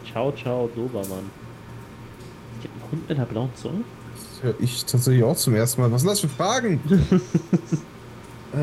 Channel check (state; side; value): identical; both; correlation 1.00